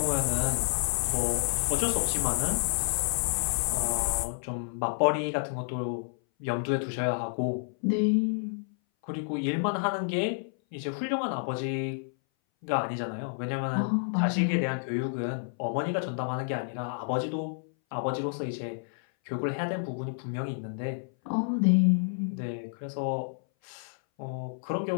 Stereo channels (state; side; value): silent; right; 58 dB below the other